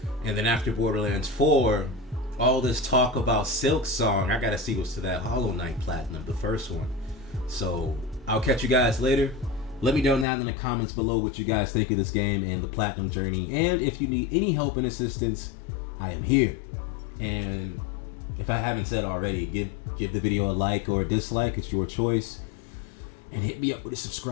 And then after Borderlands 4, all this talk about Silk Song, I gotta see what's to that Hollow Knight Platinum, the first one. So I'll catch you guys later. Let me know down in the comments below what you guys think of this game and the Platinum journey. And if you need any help and assistance, I am here. And if I haven't said already, give the video a like or a dislike. It's your choice. And hit me up with a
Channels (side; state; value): right; drops out; at 10.2 s